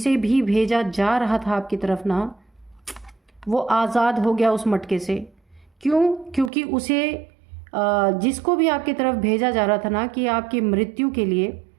भी भेजा जा रहा था आपकी तरफ ना, वो आज़ाद हो गया उस मटके से। क्यों? क्योंकि उसे जिसको भी आपकी तरफ भेजा जा रहा था ना कि आपकी मृत्यु के लिए,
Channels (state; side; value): drops out; left; at 6.5 s